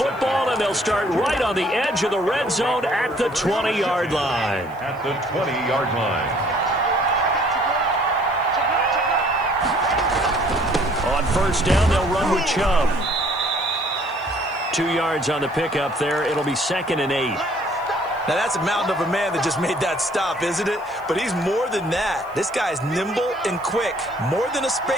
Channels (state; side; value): noise; right; hiss, 29 dB below the sound